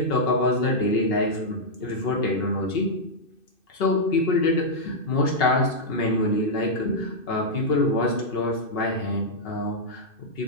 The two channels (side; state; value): right; late; 2.6 ms